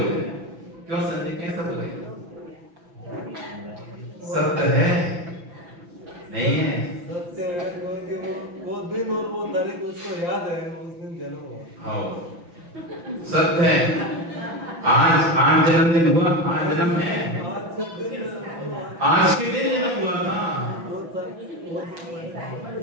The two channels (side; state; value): left; late; 6.0 ms